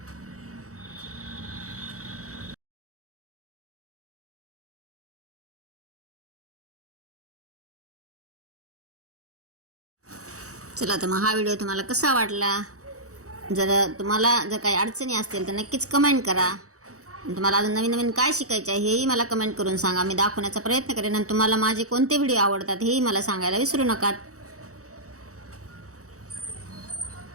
चला तर मग हा व्हिडिओ तुम्हाला कसा वाटला? जर तुम्हाला जर काही अडचणी असतील तर नक्कीच कमेंट करा. तुम्हाला अजून नवीन नवीन काय शिकायचं आहे हेही मला कमेंट करून सांगा. मी दाखवण्याचा प्रयत्न करेन आणि तुम्हाला माझे कोणते व्हिडिओ आवडतात हेही मला सांगायला विसरू नका.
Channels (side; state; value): left; late; 0.65 ms